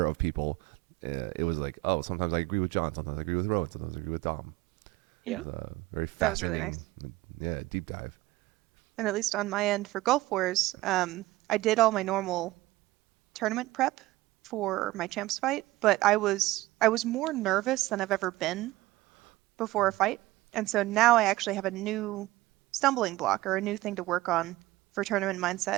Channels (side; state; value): left; quieter; 18.2 dB